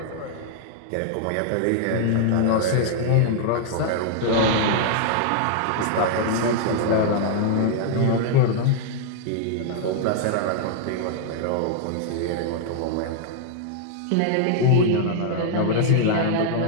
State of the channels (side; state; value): both; different; correlation 0.00